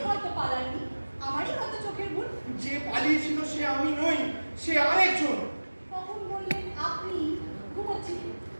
হয়তো পালাননি, আমারই হয়তো চোখের ভুল। যে পালিয়েছিল সে আমি নই, সে আরেকজন। কখন বললেন আপনি ঘুমোচ্ছিলেন?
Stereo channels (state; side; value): inverted; both; correlation -1.00